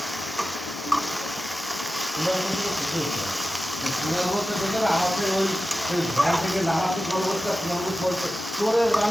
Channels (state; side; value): normal; both; correlation 0.93